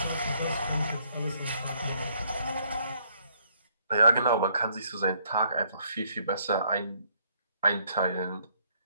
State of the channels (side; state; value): both; inverted; correlation -0.68